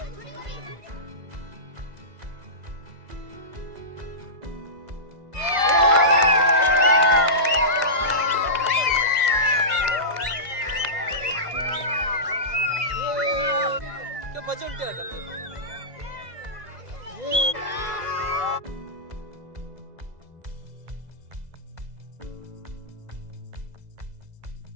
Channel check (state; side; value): late; left; 2.0 ms